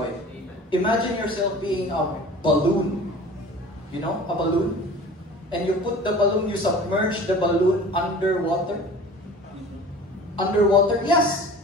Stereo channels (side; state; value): both; normal; correlation 0.42